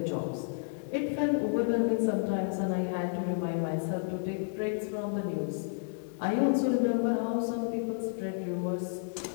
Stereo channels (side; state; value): right; silent; digital silence